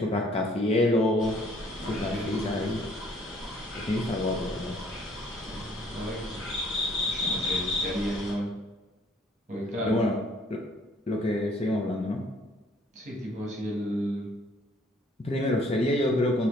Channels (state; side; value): normal; both; correlation 0.60